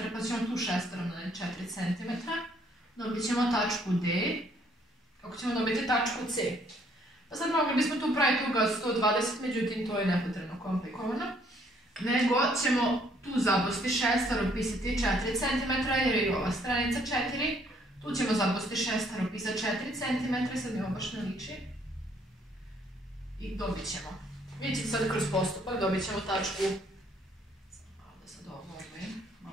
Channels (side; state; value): both; normal; correlation 0.65